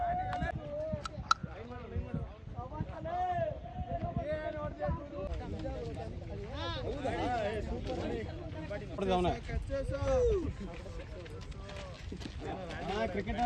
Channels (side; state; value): both; identical; correlation 1.00